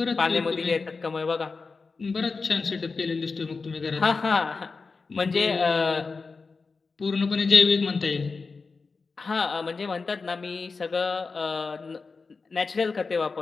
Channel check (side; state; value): right; quieter; 4.4 dB